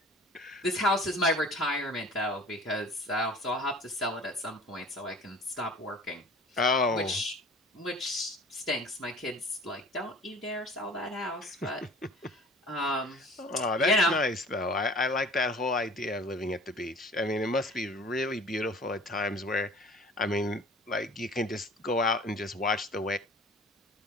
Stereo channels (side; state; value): both; normal; correlation 0.46